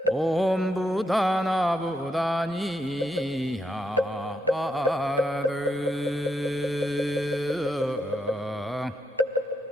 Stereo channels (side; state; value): both; normal; correlation 0.81